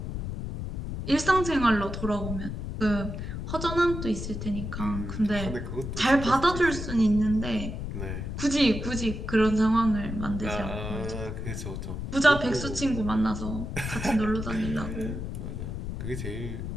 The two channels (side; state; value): left; noise; rumble, 5 dB below the sound